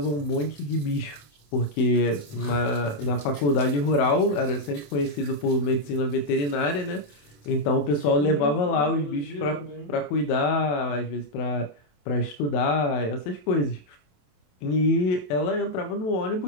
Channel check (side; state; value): right; late; 27 ms